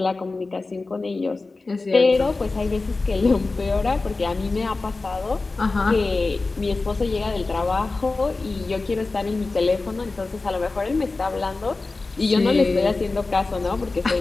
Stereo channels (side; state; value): right; quieter; 3.6 dB